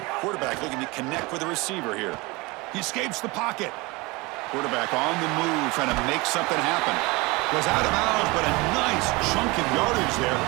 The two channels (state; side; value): quieter; left; 24.3 dB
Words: Quarterback looking to connect with the receiver here. He escapes the pocket. Quarterback on the move, trying to make something happen. Was out of bounds, but a nice chunk of yardage there.